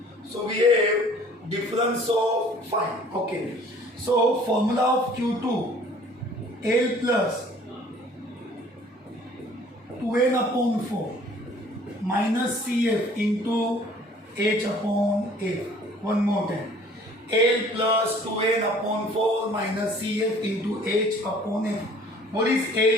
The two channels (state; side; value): normal; both; correlation 0.53